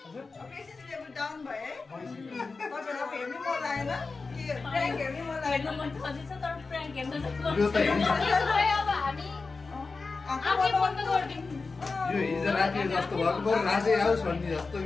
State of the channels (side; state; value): right; quieter; 4.1 dB